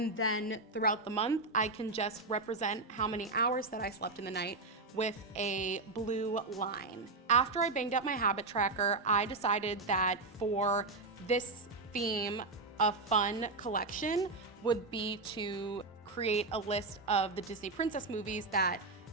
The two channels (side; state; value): left; quieter; 3.5 dB